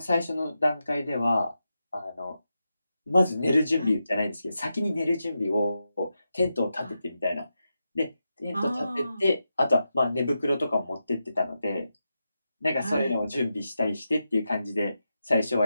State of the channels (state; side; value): inverted; both; correlation -0.88